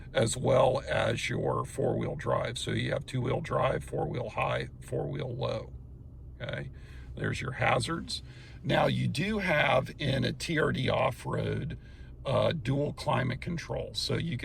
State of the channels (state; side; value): identical; both; correlation 1.00